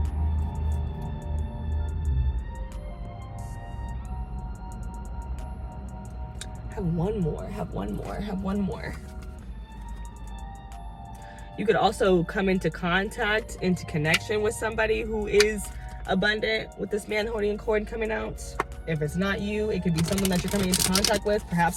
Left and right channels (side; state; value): both; identical; correlation 1.00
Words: Have one more. You could also come into contact, into connection with somebody who is abundant with this man holding a coin coming out. If it's not you, it could be someone that you're coming into contact with, perhaps